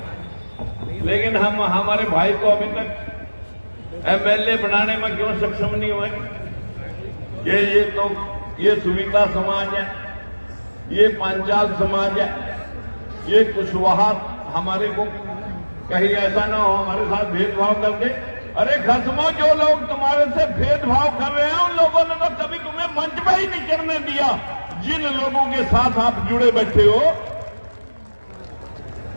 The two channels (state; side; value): inverted; both; correlation -1.00